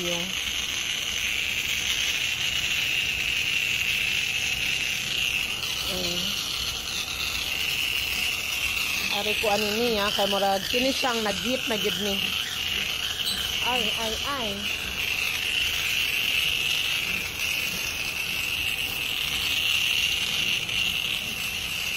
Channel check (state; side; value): identical; both; correlation 1.00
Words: Ari ko ani niya kay murag kini siyang nagit na gid ni. Ay.